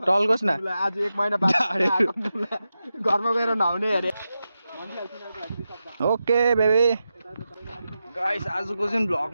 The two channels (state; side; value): inverted; both; correlation -0.90